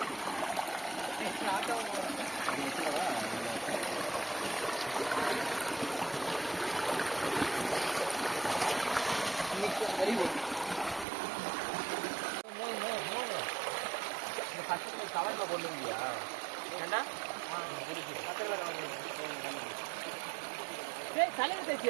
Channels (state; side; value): drops out; left; at 11.1 s